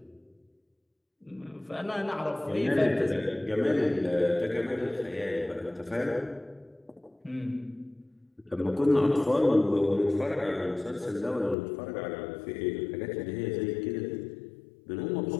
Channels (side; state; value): right; drops out; at 11.6 s